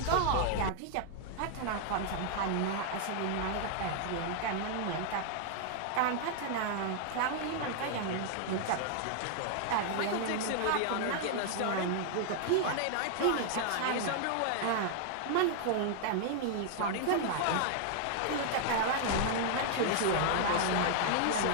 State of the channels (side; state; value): both; different; correlation 0.00